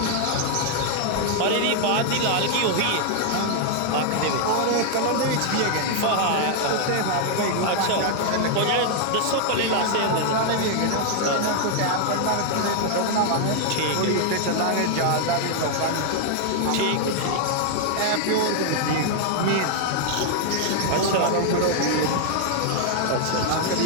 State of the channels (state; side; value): different; both; correlation 0.00